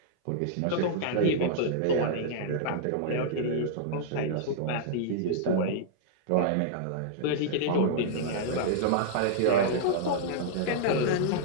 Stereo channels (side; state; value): both; different; correlation -0.02